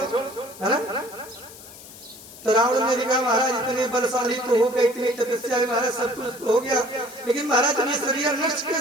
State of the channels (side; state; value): left; noise; hiss, 17 dB below the sound